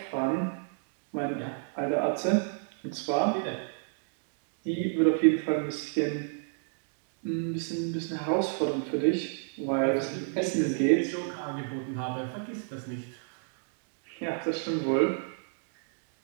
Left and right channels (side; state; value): left; silent; digital silence